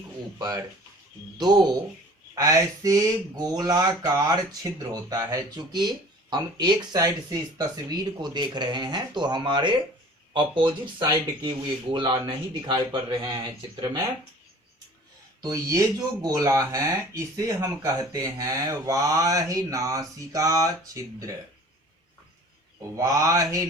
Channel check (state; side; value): normal; both; correlation 0.47